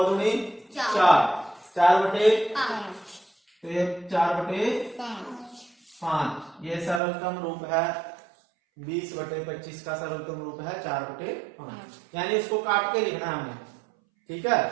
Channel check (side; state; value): left; drops out; at 7.0 s